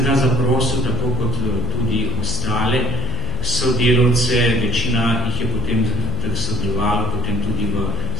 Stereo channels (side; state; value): left; noise; hum, 10 dB below the sound